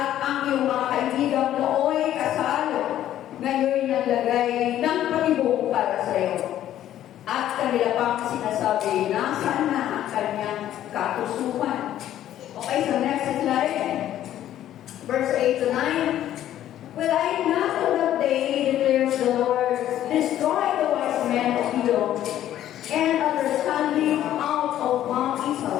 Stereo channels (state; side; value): quieter; right; 12.1 dB